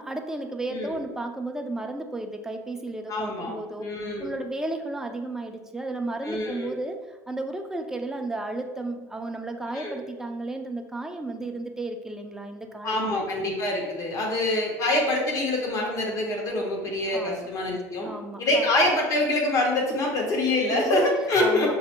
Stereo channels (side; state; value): both; normal; correlation 0.42